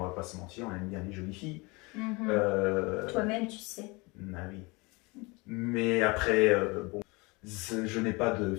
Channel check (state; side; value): quieter; right; 26.2 dB